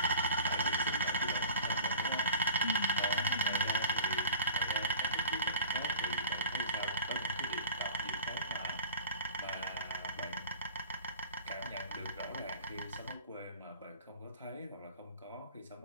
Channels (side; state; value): both; inverted; correlation -0.41